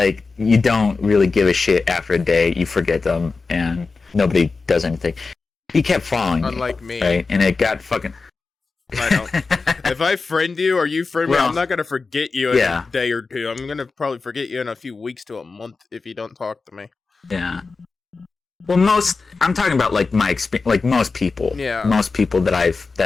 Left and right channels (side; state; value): right; quieter; 4.2 dB